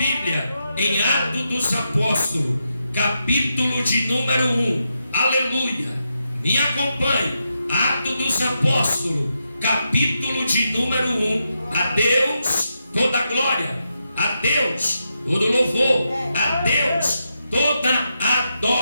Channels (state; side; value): inverted; both; correlation -0.85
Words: em Atos dos Apóstolos, capítulo de número 1, aleluia, me acompanhe. Atos dos Apóstolos, capítulo de número 1. A Deus toda a glória, a Deus todo louvor, a Deus toda